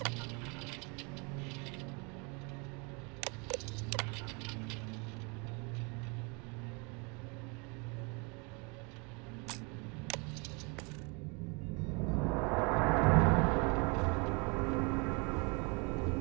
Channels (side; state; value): left; quieter; 31.5 dB